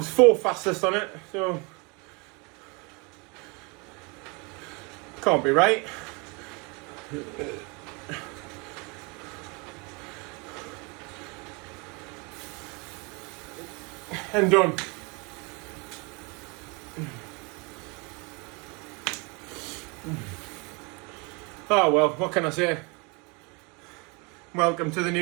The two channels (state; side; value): quieter; left; 29.8 dB